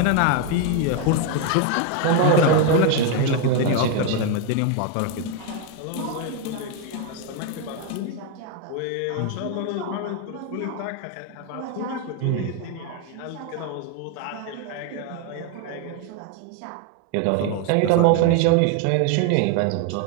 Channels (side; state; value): both; different; correlation 0.01